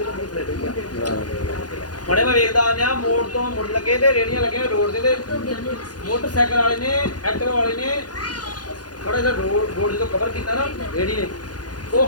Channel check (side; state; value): right; late; 0.69 ms